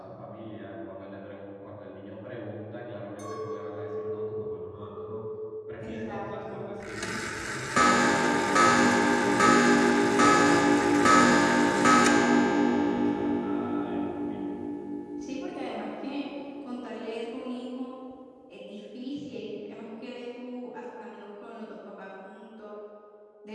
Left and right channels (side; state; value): both; identical; correlation 1.00